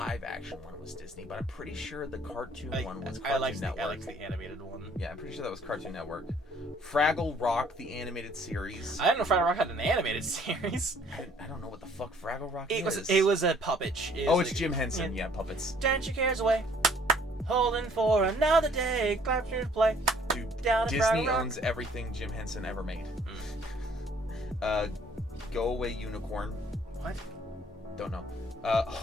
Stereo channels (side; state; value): both; normal; correlation 0.59